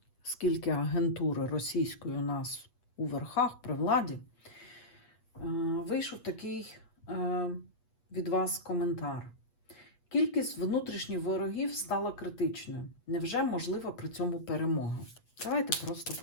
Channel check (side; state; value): right; late; 8.2 ms